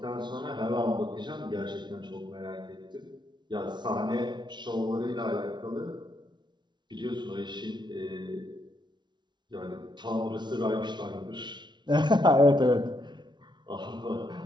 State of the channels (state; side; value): late; left; 0.21 ms